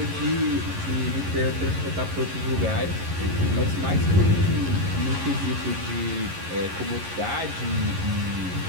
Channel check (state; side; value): late; left; 11 ms